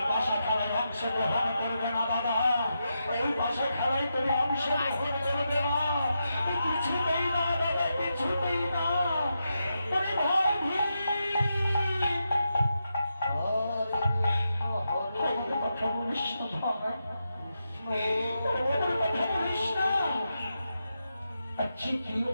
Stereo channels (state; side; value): inverted; both; correlation -0.86